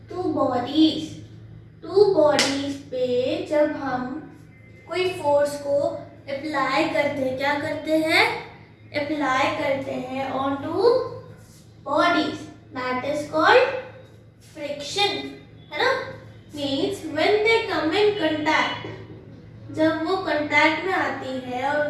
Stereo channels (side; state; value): both; identical; correlation 1.00